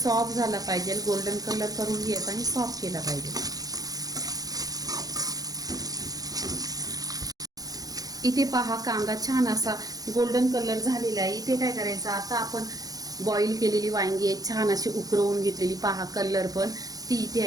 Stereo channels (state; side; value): late; left; 0.18 ms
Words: झाला पाहिजे. गोल्डन कलर करून घ्यायचा आणि सॉफ्ट केला पाहिजे. इथे पहा, कांदा छान असा गोल्डन कलर झालेला आहे. इथे काय करायचं, आता आपण बॉईल केलेली वांगी आहे, छान अशी उकरवून घेतलेली. पहा कलर पण ती इथे